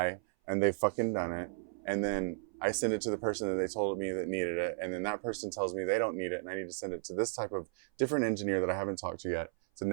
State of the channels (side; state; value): left; silent; 55 dB below the other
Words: and they've fucking done it. And then I send it to the person that they told me that needed it. And then that person tells me they don't need it. And I need to send it to this type of different engineer that I haven't talked to yet. It's a